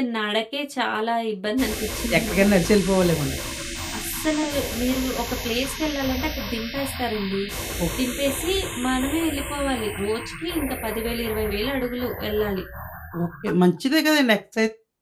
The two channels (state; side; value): identical; both; correlation 1.00